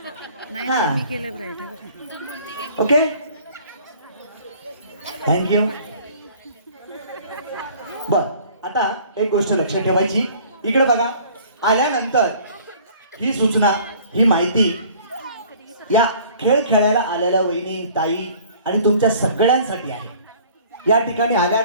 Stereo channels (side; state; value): both; inverted; correlation -0.51